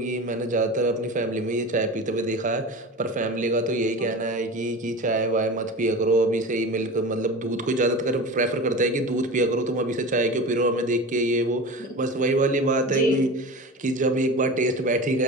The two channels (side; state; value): both; normal; correlation 0.30